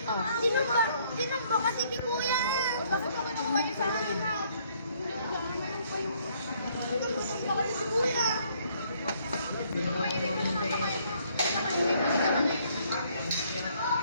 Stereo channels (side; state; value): both; inverted; correlation -0.66